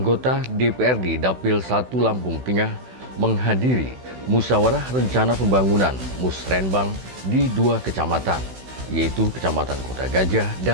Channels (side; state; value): left; late; 16 ms